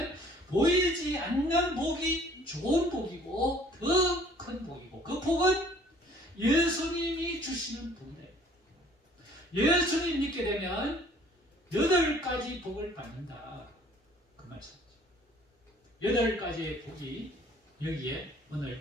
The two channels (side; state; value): both; normal; correlation 0.55